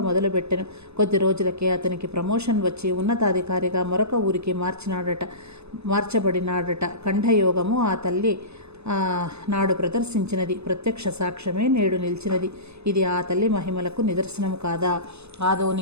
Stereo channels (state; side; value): late; left; 0.80 ms